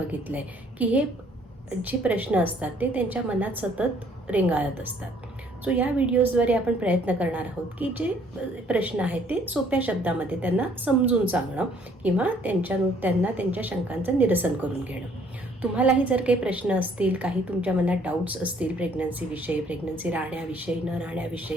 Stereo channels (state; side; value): normal; both; correlation 0.62